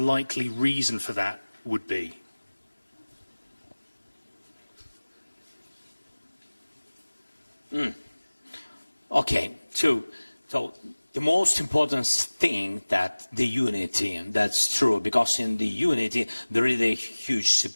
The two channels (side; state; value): both; inverted; correlation -1.00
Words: reason for that would be? Okay, so the most important thing that the unity, that's true, because in the unity there is a huge